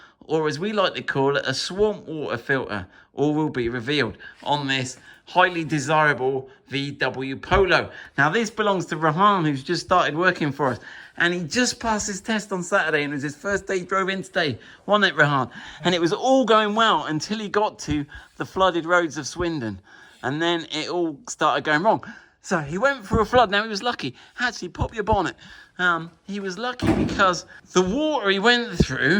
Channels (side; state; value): both; identical; correlation 1.00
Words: or as we like to call it, a swamp water filter. All will be revealed on this highly desirable VW Polo. Now, this belongs to Rehan, who's just started working for us. And he just passed his test on Saturday, and it was his first day he drove in today, wasn't it, Rehan? And it was all going well until he got to the flooded roads of Swindon. And then it all started going wrong. So he went through a flood. Now, he was lucky. Actually, pop your bonnet. He was lucky because the water he went